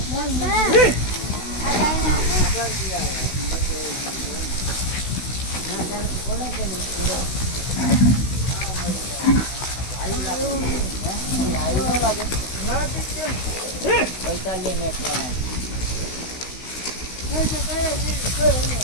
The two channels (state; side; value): late; right; 16 ms